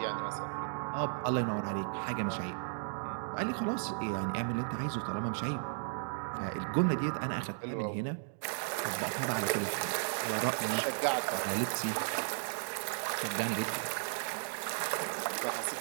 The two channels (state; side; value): silent; left; digital silence